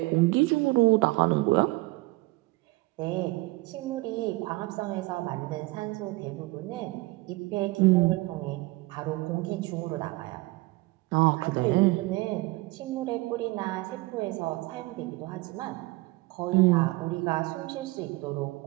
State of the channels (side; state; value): left; quieter; 22.0 dB